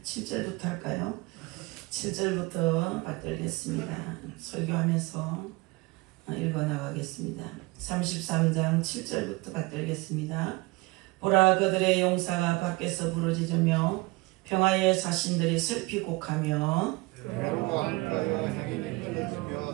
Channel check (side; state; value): left; quieter; 23.4 dB